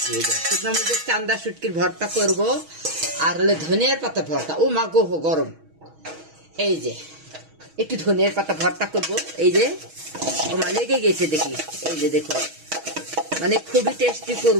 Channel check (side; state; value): left; late; 6.3 ms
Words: এই যে শুকনা মরিচের চান্দা শুটকির ভর্তা করব। আর হলে ধনিয়ার পাতা ভর্তা, ও মা গো গরম। এই যে একটু ধনিয়ার পাতা ভর্তা করব, এই যে আমার লেগে গেছে দেখি, এই যে দেখো, মানে খুবই টেস্টি